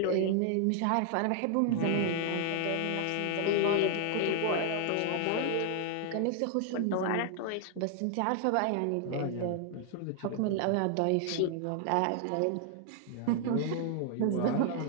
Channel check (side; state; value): both; different; correlation 0.00